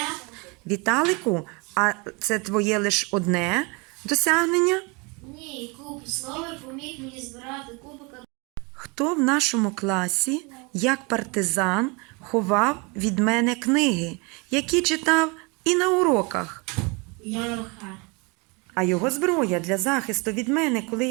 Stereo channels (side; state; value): left; quieter; 29.3 dB